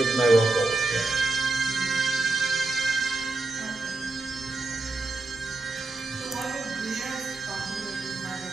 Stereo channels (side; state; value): left; quieter; 3.3 dB